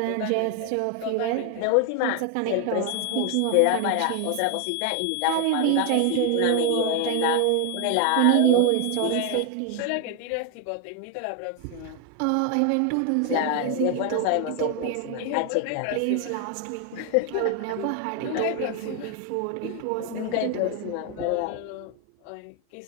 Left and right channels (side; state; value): both; different; correlation 0.01